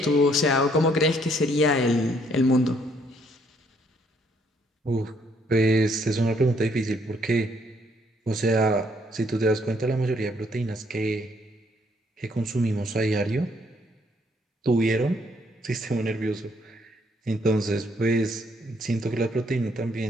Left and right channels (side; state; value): both; normal; correlation 0.68